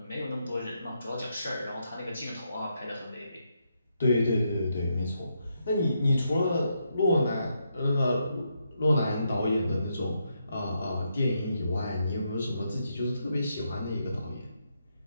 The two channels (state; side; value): inverted; both; correlation -0.80